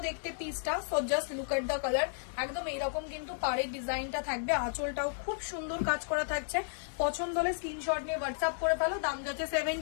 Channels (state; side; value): silent; right; digital silence